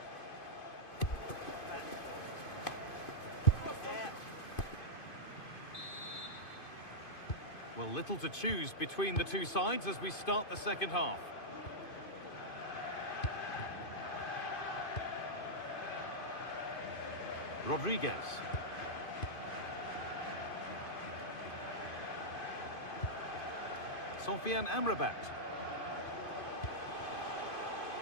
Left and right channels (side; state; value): right; late; 2.5 ms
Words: Well, little to choose between the two sides as we start the second half. Rodriguez. Sofian Amrabat.